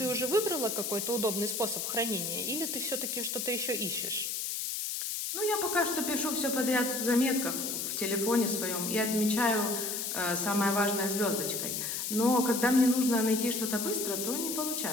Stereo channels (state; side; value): noise; left; hiss, 2 dB below the sound